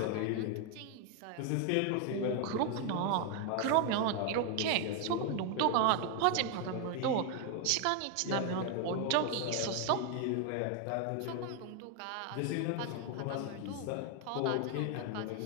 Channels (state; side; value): different; both; correlation 0.01